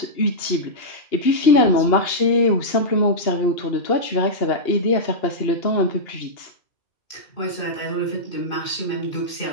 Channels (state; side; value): late; right; 2.8 ms